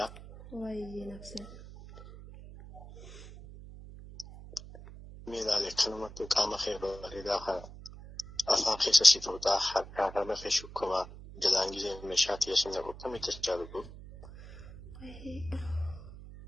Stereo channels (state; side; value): noise; right; hum, 15 dB below the sound